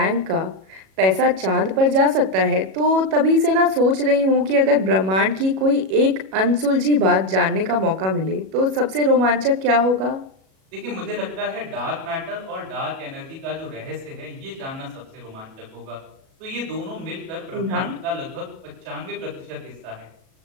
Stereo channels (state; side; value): late; left; 37 ms